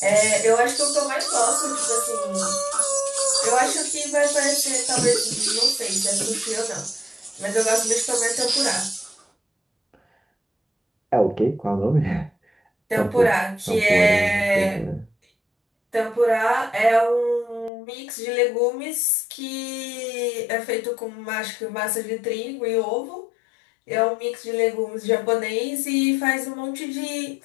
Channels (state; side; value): drops out; right; at 17.7 s